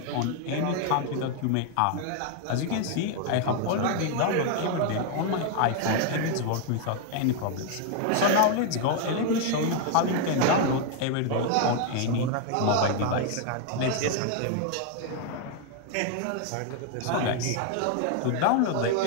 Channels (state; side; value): different; both; correlation 0.00